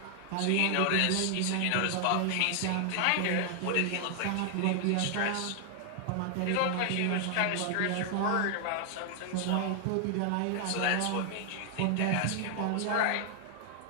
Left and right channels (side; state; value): both; different; correlation 0.00